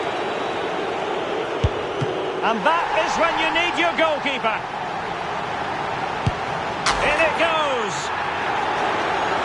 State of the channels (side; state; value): both; identical; correlation 1.00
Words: And that is when you need your goalkeeper. In it goes.